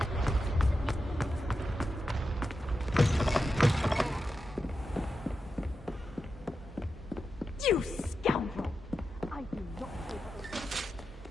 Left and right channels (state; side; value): normal; both; correlation 0.89